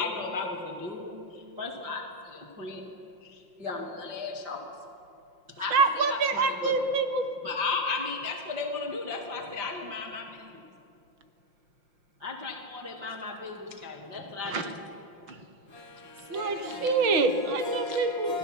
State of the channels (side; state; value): left; late; 5.7 ms